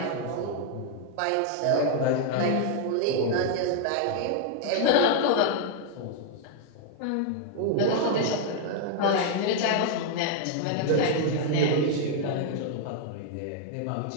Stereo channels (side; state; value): both; different; correlation 0.00